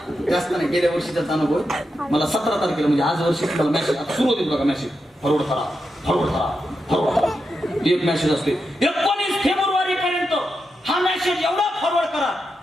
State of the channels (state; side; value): normal; both; correlation 0.87